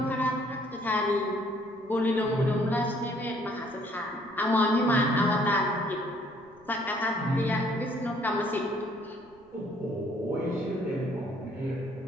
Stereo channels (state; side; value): noise; right; rumble, 30 dB below the sound